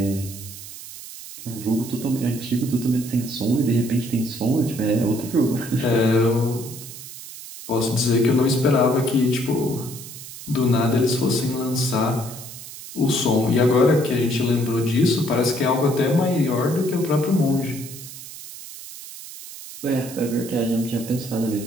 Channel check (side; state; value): right; noise; hiss, 13 dB below the sound